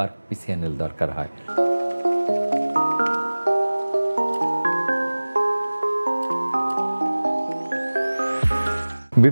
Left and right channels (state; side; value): inverted; both; correlation -1.00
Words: পিসিএনএল দরকার হয়।